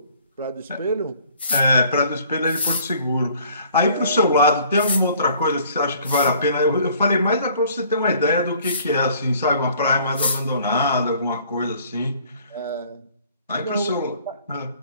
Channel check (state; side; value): inverted; both; correlation -0.56